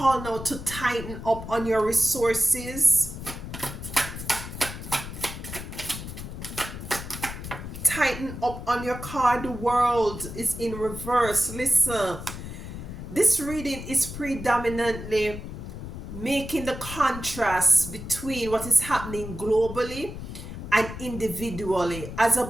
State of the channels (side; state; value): left; noise; rumble, 9 dB below the sound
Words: now to tighten up on your resources. Tighten up on your card. The World is in reverse. Listen, this reading is predominantly making the contrast between what is happening globally and individually. As